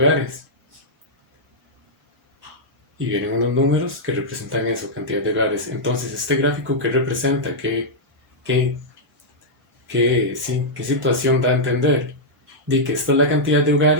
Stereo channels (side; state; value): both; normal; correlation -0.07